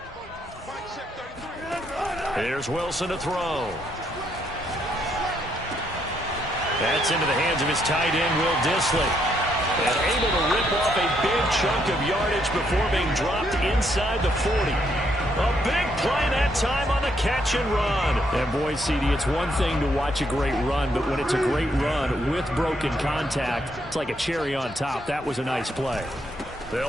Here's Wilson to throw. That's into the hands of his tight end, Will Dissly. And able to rip off a big chunk of yardage before being dropped inside the 40. A big play that time on the catch and run. And boy, CD, it's one thing to watch a great run, but when it's a great run with broken contact, it's like a cherry on top. That was a nice play.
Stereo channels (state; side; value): normal; both; correlation 0.74